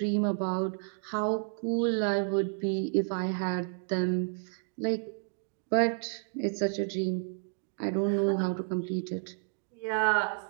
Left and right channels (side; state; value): left; silent; 57 dB below the other